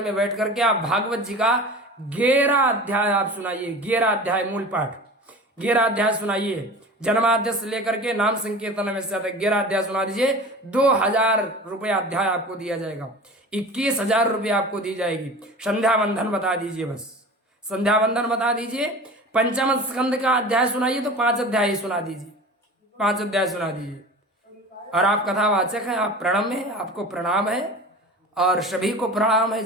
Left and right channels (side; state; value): both; normal; correlation 0.36